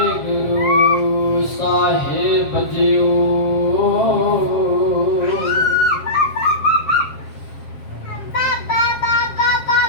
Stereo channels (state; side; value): late; right; 7.5 ms